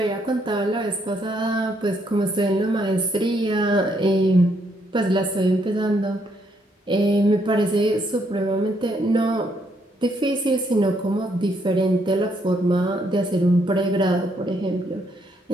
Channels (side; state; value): both; normal; correlation 0.73